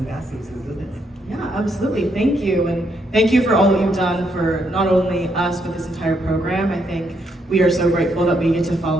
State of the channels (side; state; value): both; normal; correlation 0.76